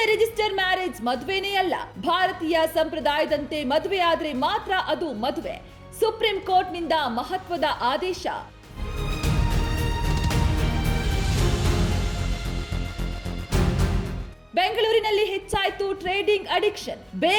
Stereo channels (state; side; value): identical; both; correlation 1.00